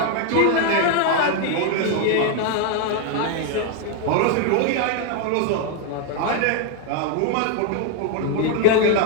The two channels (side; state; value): both; different; correlation 0.00